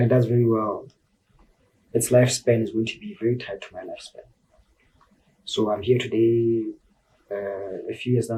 it does very well, its lifespan is going to be very tied to my lifespan. So I'm here today, a few years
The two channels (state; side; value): identical; both; correlation 1.00